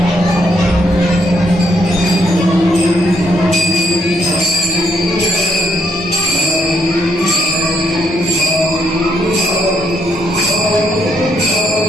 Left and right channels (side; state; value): both; normal; correlation 0.73